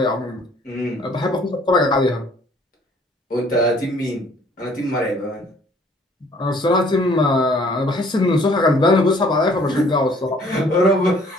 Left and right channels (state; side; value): normal; both; correlation 0.58